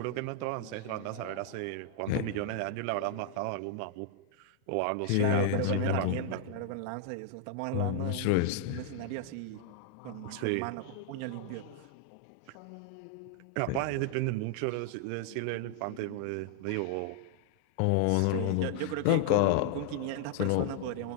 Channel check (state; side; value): different; both; correlation 0.00